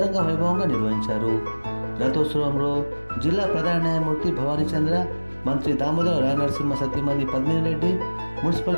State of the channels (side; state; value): both; inverted; correlation -1.00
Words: వైభవంగా నిర్వహించారు. రథోత్సవంలో జిల్లా ప్రధాన న్యాయమూర్తి భవానీ చంద్ర, మంత్రి దామోదర రాయనరసింహ సతీమణి పద్మిని రెడ్డి,